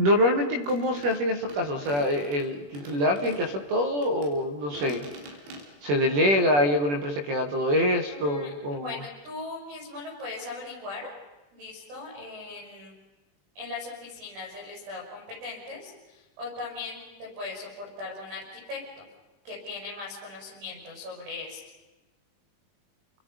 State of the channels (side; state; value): left; late; 21 ms